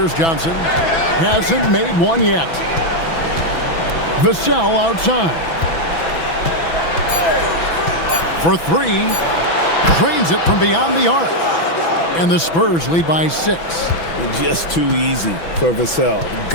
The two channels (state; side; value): late; right; 6.0 ms